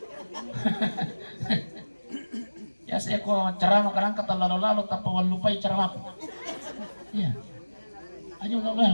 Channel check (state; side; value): inverted; both; correlation -1.00